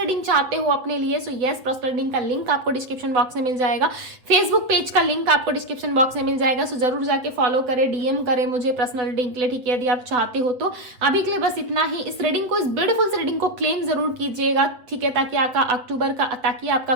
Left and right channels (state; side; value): late; left; 8.0 ms